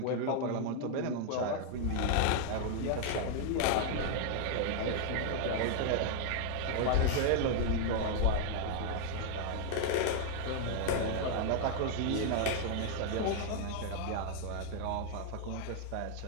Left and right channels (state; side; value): different; both; correlation 0.00